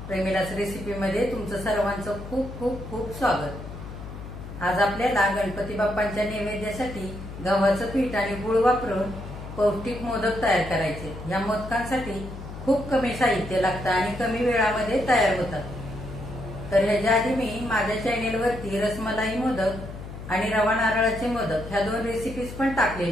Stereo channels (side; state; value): left; noise; hum, 11 dB below the sound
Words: प्रेमिलास रेसिपीमध्ये तुमचं सर्वांचं खूप खूप खूप स्वागत। आज आपल्याला गणपती बाप्पांच्या नैवेद्यासाठी गव्हाचं पीठ आणि गूळ वापरून पौष्टिक मोदक तयार करायचे। या मोदकांसाठी खूप कमी साहित्य लागतं आणि कमी वेळामध्ये तयार होतात। तर ह्याच्या आधी मी माझ्या चॅनेलवरती रसमलाई मोदक आणि रवा नारळाचे मोदक ह्या दोन रेसिपीज पण